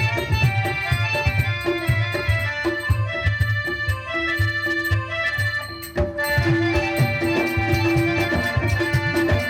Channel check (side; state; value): both; identical; correlation 1.00